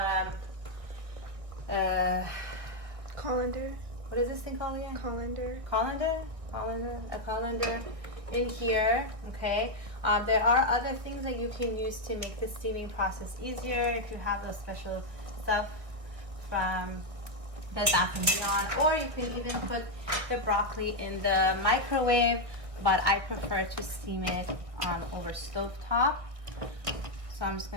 colander. What is this thing called again? Colander. A colander in here. Okay. There are other things that you can use to make the steaming process easier if you have those special stuff from Bed Bath & Beyond, or you can even put the broccoli in the microwave, but I prefer to steam it over stovetop. So I'm just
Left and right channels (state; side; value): late; left; 1.8 ms